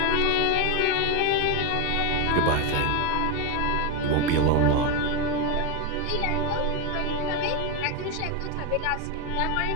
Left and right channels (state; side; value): different; both; correlation 0.02